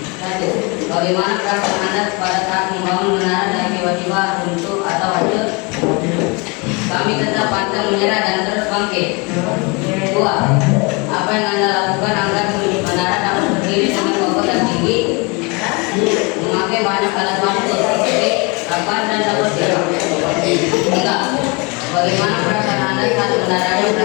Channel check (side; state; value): right; quieter; 29.2 dB